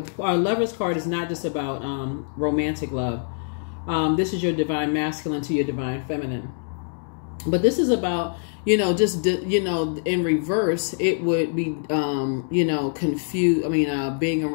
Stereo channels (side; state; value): right; silent; 60 dB below the other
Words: our Lover's card is not just about romantic love. This is your divine masculine to your divine feminine. But this is about, you know, just, you know, in reverse, it would be, you know, confused. I mean,